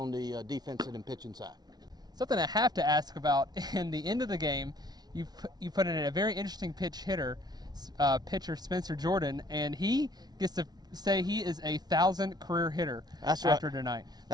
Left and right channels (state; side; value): late; left; 0.19 ms